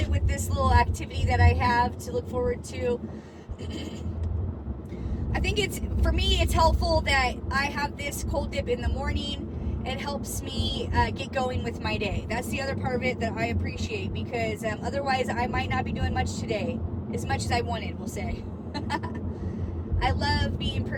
with this little activity that I have to look forward to. I think for me, it's helpful that I have this cold dip in the morning. It helps me get going with my day. That's the other part of it that I appreciate, because otherwise I might not be doing much today, as much as I wanted, we'll say. I love being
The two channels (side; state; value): both; identical; correlation 1.00